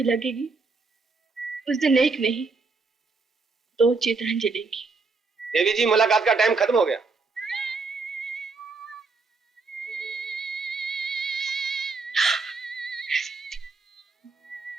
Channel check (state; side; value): quieter; left; 4.2 dB